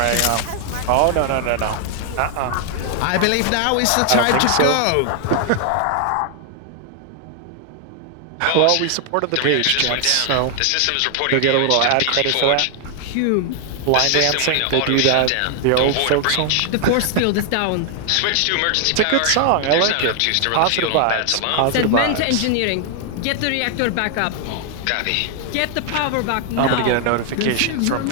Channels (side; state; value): both; different; correlation 0.00